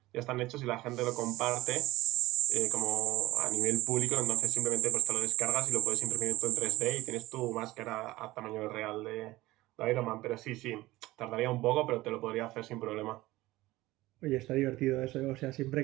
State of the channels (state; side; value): quieter; left; 18.2 dB